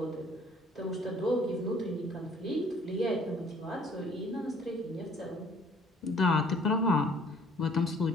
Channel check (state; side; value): normal; both; correlation 0.57